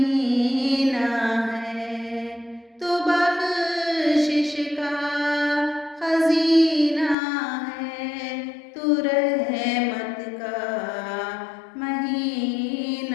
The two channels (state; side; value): drops out; right; at 7.2 s